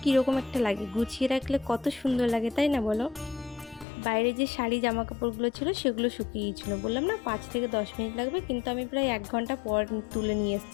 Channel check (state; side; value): drops out; right; at 3.9 s